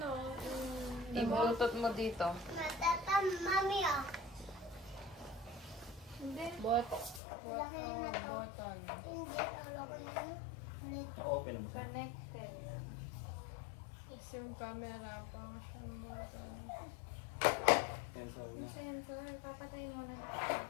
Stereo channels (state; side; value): drops out; right; at 7.2 s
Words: yung... i-bluetooth mo dito. Matata, mami, oh. Hindi. button. Hindi, ulo ko na yun. Ulit. Okay lang siya. Connected. Tapos yung camera pang siyang button. Sensor niya. Sensor. Papatayin mo na natin.